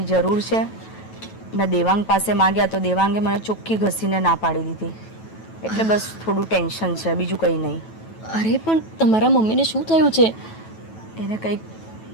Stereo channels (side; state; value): right; late; 9.2 ms